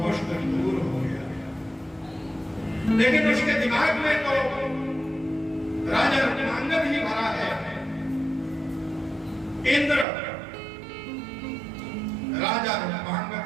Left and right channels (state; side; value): drops out; left; at 10.1 s